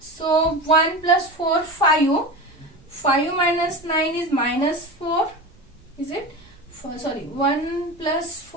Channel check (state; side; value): noise; right; rumble, 28 dB below the sound